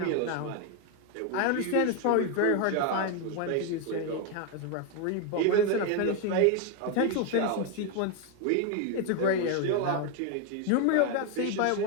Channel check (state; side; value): different; both; correlation 0.01